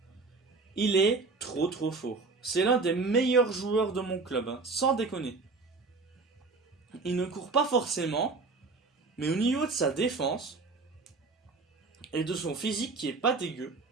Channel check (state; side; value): quieter; left; 4.0 dB